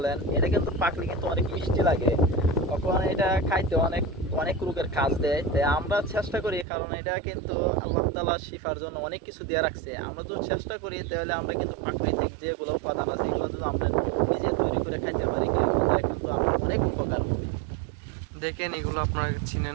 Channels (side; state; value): left; drops out; at 6.7 s